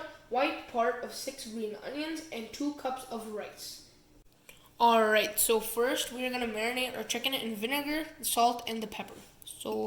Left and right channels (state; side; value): identical; both; correlation 1.00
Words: white part of 6 green onions, and 2 cups of rice. Alright, so first we're going to marinate our chicken in vinegar, salt, and the pepper.